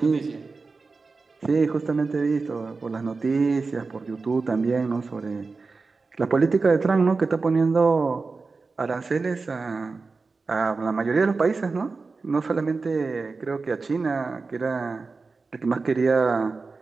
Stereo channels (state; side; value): quieter; left; 4.1 dB